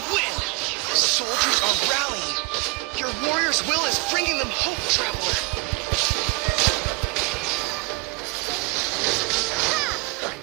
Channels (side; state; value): left; quieter; 26.1 dB